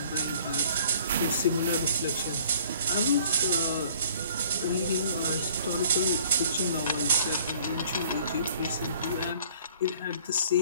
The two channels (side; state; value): both; inverted; correlation -0.54